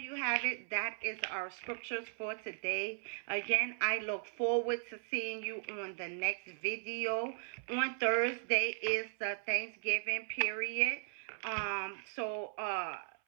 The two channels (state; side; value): silent; left; 53 dB below the other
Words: have it. That is our scriptures for today. Again, I look forward to seeing you on the next video. On Thursday is the Thanksgiving period. So